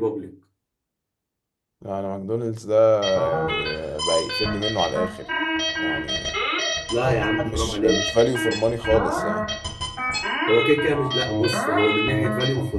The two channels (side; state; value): both; identical; correlation 1.00